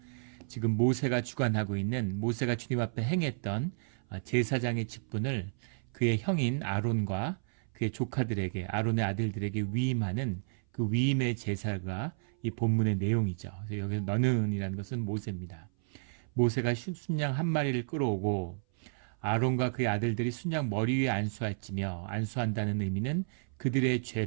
지금 모세가 주관하고 있는, 모세가 주님 앞에 행했던 제사장의 직분을 그의 형인 아론과 그의 조카들에게, 아론의 아들들에게 위임하는 그 위임의 제사가 이 본문의 내용이죠. 그래서 여기서 너는이라는 것은 모세입니다. 모세가 순양 한 마리를 끌어오고 아론과 그의 아들들이 순양 머리 위에 안수할지며, 안수한다는 의미는 그들의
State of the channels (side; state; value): left; silent; 56 dB below the other